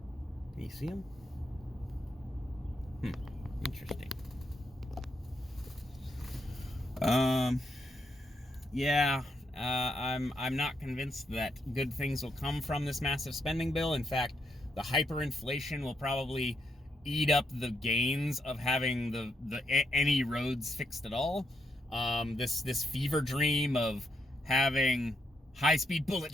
Can you see them? Interesting. Yeah, I'm not convinced that good things will come from this massive spending bill. In fact, the hyperinflation will probably eat up the gains of having any roads fixed at all. This fever dream of having high-speed bullet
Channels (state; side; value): normal; both; correlation 0.79